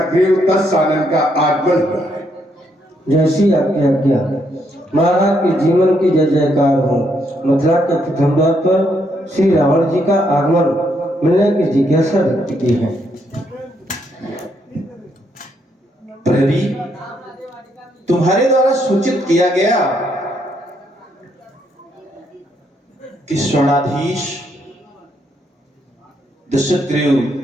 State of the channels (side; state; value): both; normal; correlation 0.75